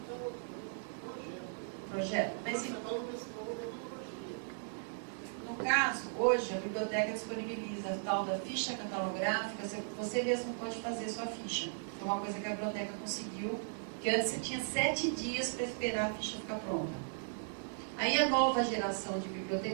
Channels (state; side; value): silent; left; digital silence